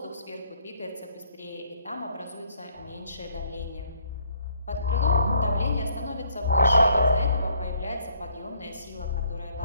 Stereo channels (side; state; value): both; inverted; correlation -0.66